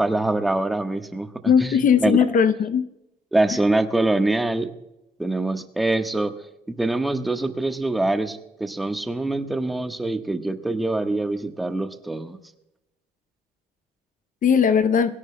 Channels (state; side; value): normal; both; correlation 0.75